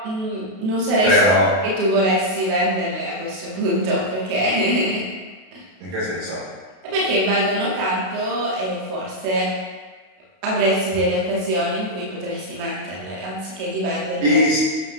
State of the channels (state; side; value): late; left; 32 ms